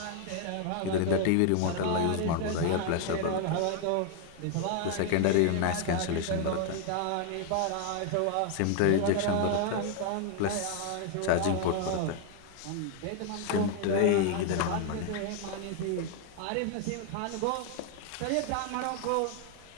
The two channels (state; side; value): different; both; correlation 0.00